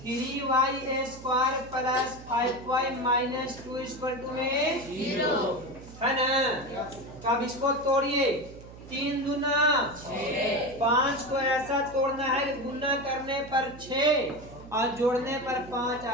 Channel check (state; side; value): noise; right; hum, 17 dB below the sound